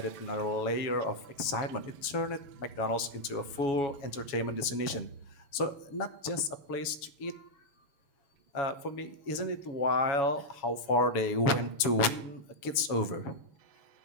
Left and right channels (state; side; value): late; right; 7.2 ms